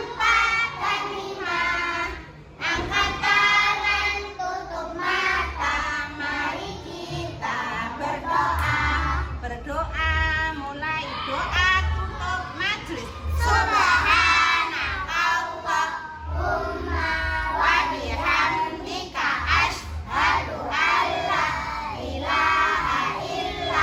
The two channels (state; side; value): identical; both; correlation 1.00